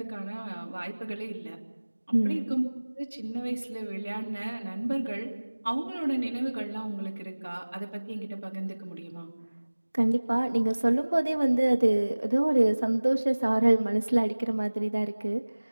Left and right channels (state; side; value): inverted; both; correlation -1.00